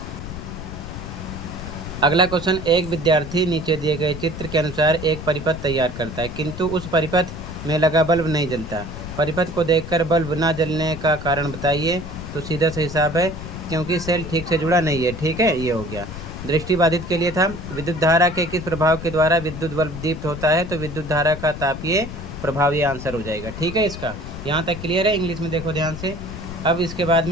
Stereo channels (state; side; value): noise; left; rumble, 9 dB below the sound